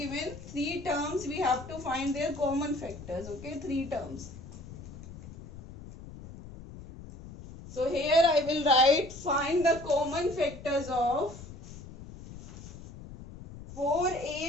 3 terms, we have to find their common factors. Okay, 3 terms. So here I will write find the common factors of 4,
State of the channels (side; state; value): left; noise; rumble, 14 dB below the sound